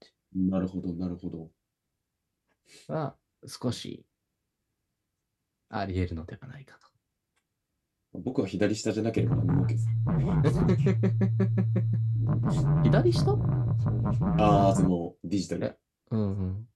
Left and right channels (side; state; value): both; identical; correlation 1.00